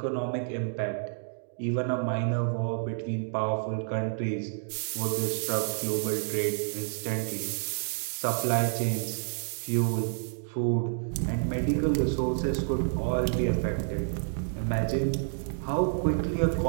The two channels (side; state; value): left; silent; digital silence